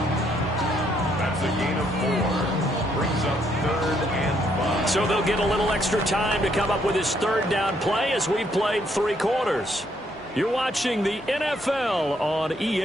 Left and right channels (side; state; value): both; normal; correlation 0.71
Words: That's a gain of 4. Brings up 3rd and 5. So they'll get a little extra time to come up with his 3rd down play as we've played 3 quarters. You're watching the NFL on